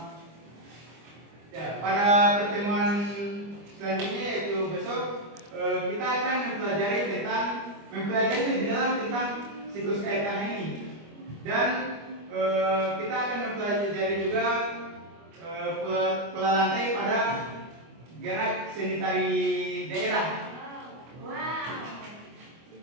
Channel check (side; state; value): left; late; 25 ms